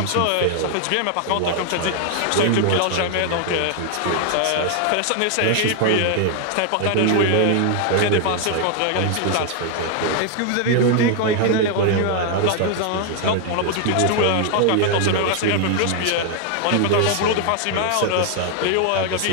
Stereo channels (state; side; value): different; both; correlation 0.00